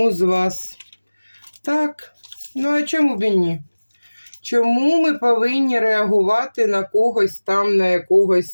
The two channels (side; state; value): both; inverted; correlation -1.00